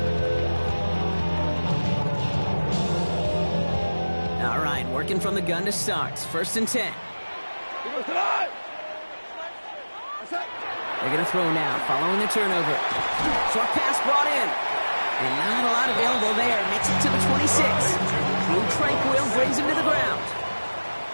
All right, working from the gun to start. First and 10. They're going to throw now, following the turnover. Short pass brought in. And not a lot available there. Makes it to the 26. Drew Tranquill brings him to the ground.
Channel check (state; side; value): inverted; both; correlation -1.00